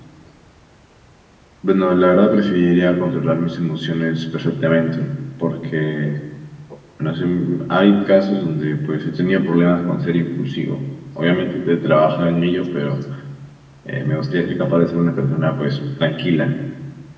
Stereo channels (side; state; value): both; identical; correlation 1.00